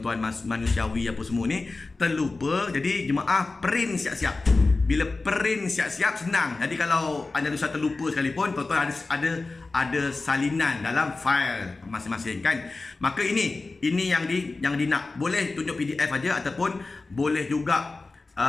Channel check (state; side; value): quieter; right; 3.6 dB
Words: manusiawi apa semua ni terlupa. Jadi jemaah print siap-siap. Bila print siap-siap senang. Jadi kalau Andalusia terlupa sekalipun, tuan-tuan ada salinan dalam file masing-masing kan. Maka ini yang nak, boleh tunjuk PDF aja ataupun boleh juga